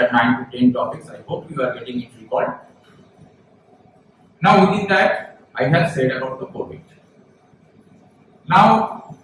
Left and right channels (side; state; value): both; identical; correlation 1.00